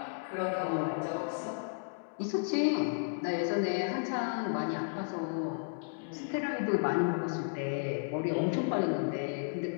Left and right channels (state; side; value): silent; right; digital silence